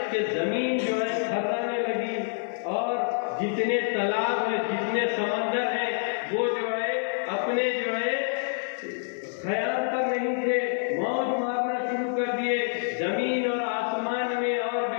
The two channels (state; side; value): silent; right; digital silence